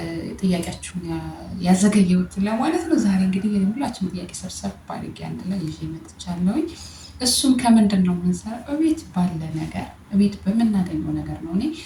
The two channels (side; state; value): both; identical; correlation 1.00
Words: ጥያቄያችሁን ያዘገየሁት ለማለት ነው። ዛሬ እንግዲህ ሁላችንም ጥያቄ ሰብሰብ አድርጌ አንድ ላይ ይዤ መጥቻለሁኝ። እሱም ከምንድን ነው የምንሰራው? እቤት ባለ ነገር፣ እቤት በምናገኘው ነገር ነው። እኔ